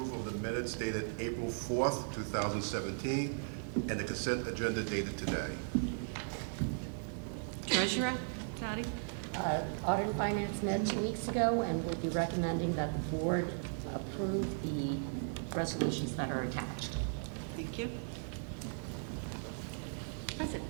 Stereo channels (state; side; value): silent; left; digital silence